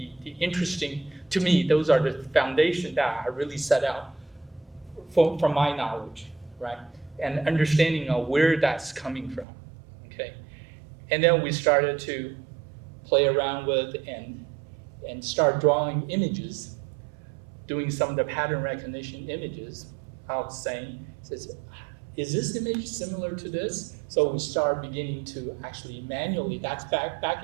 the interesting, to me, those are the foundation that I really set out from my knowledge, right? And understanding of where that's coming from, okay? And then we started to play around with and start drawing images, doing some of the pattern recognition images of saying, is this image similar to this? So we start beginning to actually manually, that's back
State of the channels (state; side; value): drops out; left; at 9.5 s